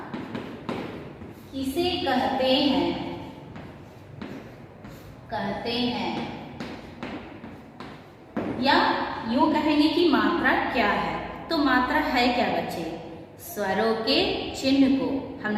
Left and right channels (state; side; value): identical; both; correlation 1.00